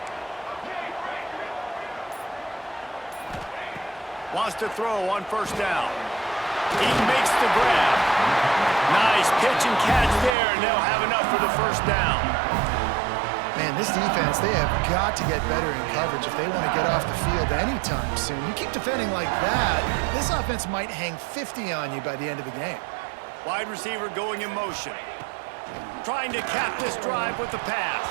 Wants to throw on 1st down. He makes the grab. Nice pitch and catch there, and they'll have enough for the 1st down. Man, this defense, they have got to get better in coverage if they want to get off the field anytime soon. You keep defending like that, this offense might hang 50 on you by the end of the game. Wide receiver going in motion. Trying to cap this drive with the pass.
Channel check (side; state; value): left; drops out; at 10.4 s